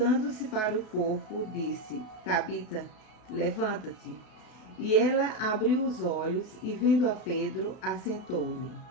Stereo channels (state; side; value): late; right; 33 ms